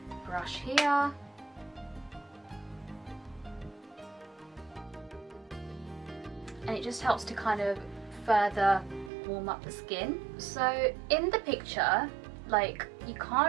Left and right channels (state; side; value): drops out; left; at 9.1 s